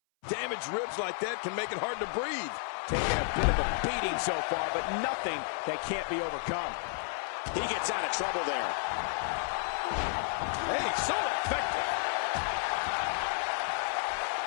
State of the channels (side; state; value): right; silent; 57 dB below the other